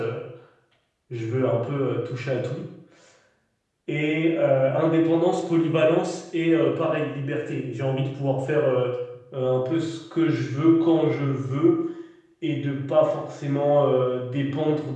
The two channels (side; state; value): both; identical; correlation 1.00